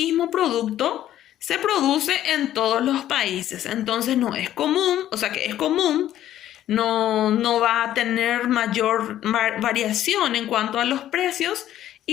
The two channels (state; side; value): quieter; right; 12.3 dB